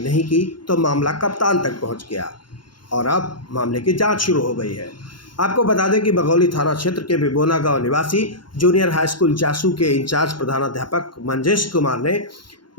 की तो मामला कप्तान तक पहुंच गया और अब मामले की जांच शुरू हो गई है। आपको बता दें कि बघौली थाना क्षेत्र के बिबोना गांव निवासी जूनियर हाई स्कूल जासू के इंचार्ज प्रधानाध्यापक मंजेश कुमार ने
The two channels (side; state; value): right; late; 0.72 ms